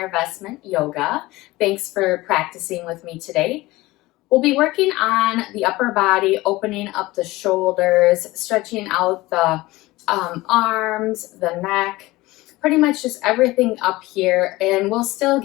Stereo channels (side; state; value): right; quieter; 19.5 dB